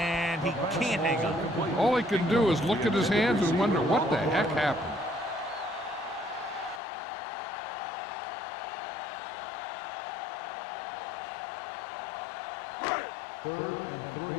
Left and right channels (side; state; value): right; drops out; at 6.8 s